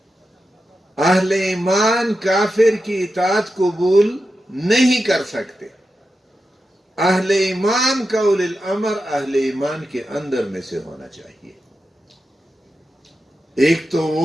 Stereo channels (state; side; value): normal; both; correlation 0.90